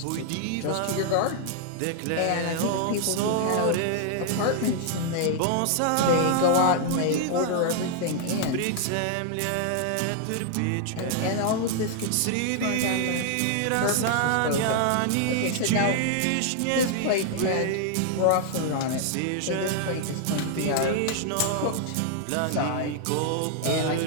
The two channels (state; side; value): different; both; correlation 0.00